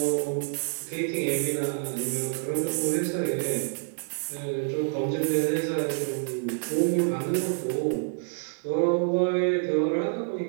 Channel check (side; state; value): left; silent; digital silence